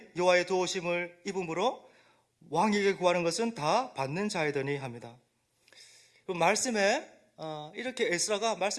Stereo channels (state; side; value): identical; both; correlation 1.00